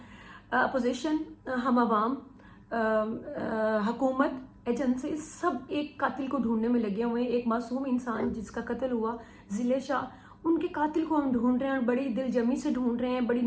अपोजिशन, हम आवाम, हुकूमत, एजेंसी सब एक कातिल को ढूंढने में लगे हुए हैं। एक मासूम इंसान जिसका कत्ल हुआ, ज़िले शाह, उनके कातिल को हम ढूंढ रहे हैं और बड़ी दिलजमी से ढूंढ रहे हैं, बड़ी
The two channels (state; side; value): identical; both; correlation 1.00